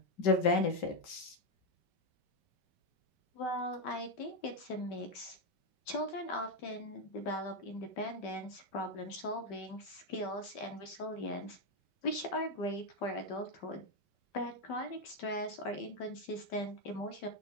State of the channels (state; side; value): late; right; 5.2 ms